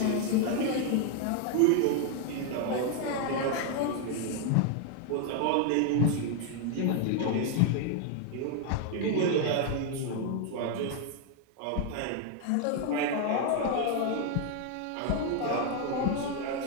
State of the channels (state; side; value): different; both; correlation 0.00